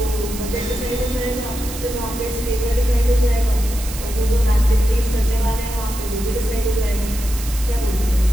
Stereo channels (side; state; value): right; noise; hiss, 11 dB below the sound